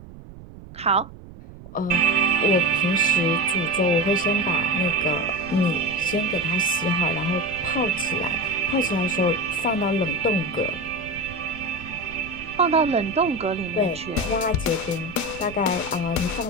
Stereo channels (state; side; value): noise; right; rumble, 17 dB below the sound